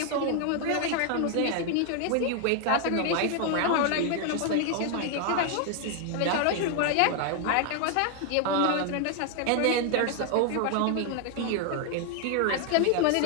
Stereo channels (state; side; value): different; both; correlation 0.00